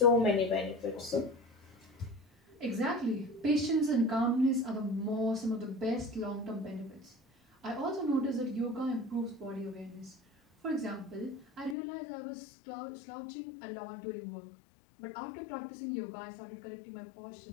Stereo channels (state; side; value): drops out; right; at 11.8 s